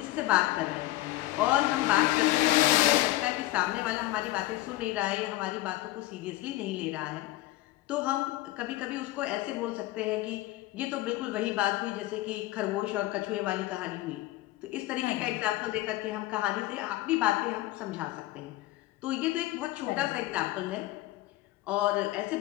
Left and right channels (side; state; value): right; quieter; 17.1 dB